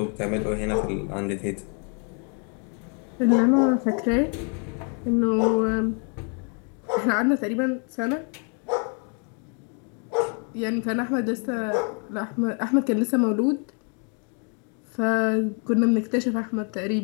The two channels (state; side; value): quieter; right; 39.5 dB